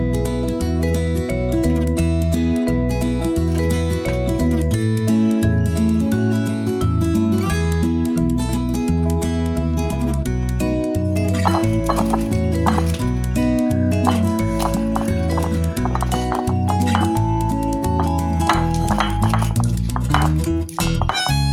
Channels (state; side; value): identical; both; correlation 1.00